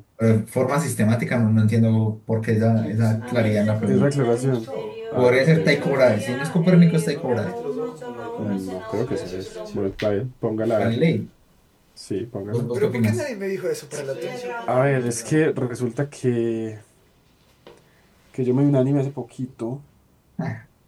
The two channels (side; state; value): both; identical; correlation 1.00